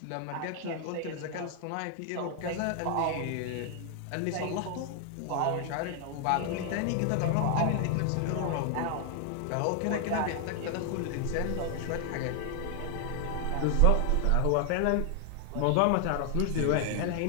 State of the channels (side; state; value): both; different; correlation 0.00